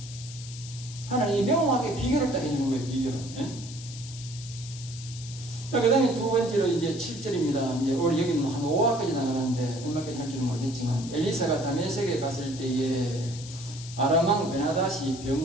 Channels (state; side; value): noise; left; hiss, 14 dB below the sound